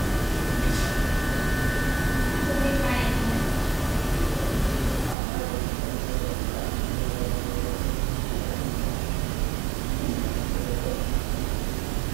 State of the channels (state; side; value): drops out; left; at 5.2 s